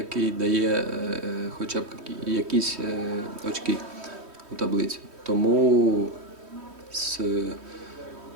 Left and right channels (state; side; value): late; left; 3.1 ms